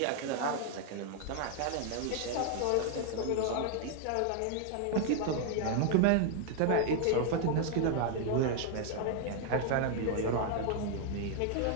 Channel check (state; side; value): different; both; correlation 0.00